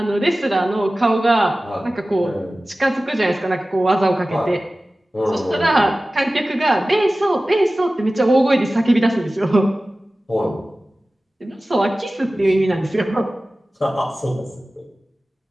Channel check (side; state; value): both; normal; correlation 0.96